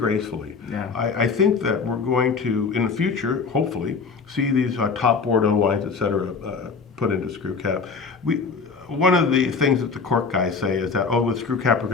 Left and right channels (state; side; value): quieter; right; 5.0 dB